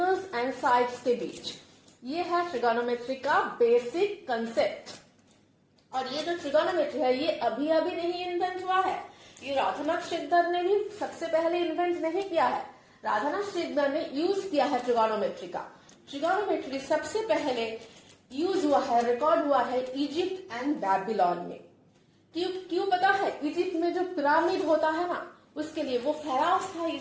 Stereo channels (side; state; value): both; identical; correlation 1.00